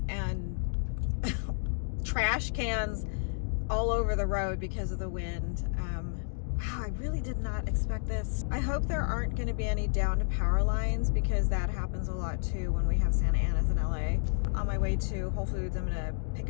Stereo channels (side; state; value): right; silent; digital silence